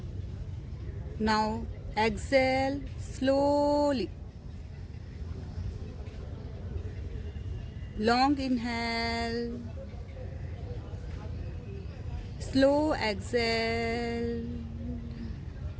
Now exhale slowly. Long inhale. Slow exhale.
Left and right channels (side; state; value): both; identical; correlation 1.00